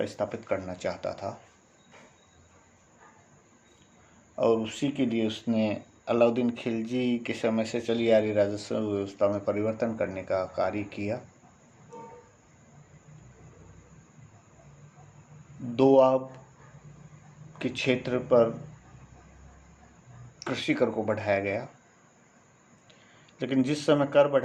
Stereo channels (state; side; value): identical; both; correlation 1.00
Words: स्थापित करना चाहता था और उसी के लिए उसने अलाउद्दीन खिलजी के समय से चली आ रही राजस्व व्यवस्था में परिवर्तन करने का कार्य किया। दोआब के क्षेत्र पर कृषि कर को बढ़ाया गया, लेकिन जिस समय कर